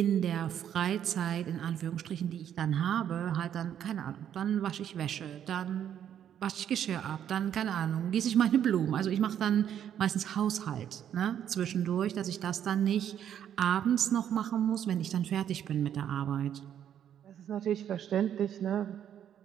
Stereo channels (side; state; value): left; quieter; 9.7 dB